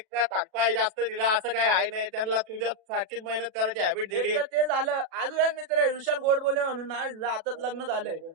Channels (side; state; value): left; late; 37 ms